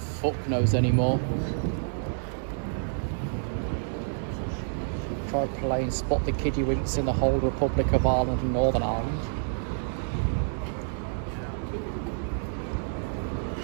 knows anymore. Tried playing Spot the Kiddywinks in the whole Republic of Ireland and Northern Ireland.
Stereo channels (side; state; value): left; silent; digital silence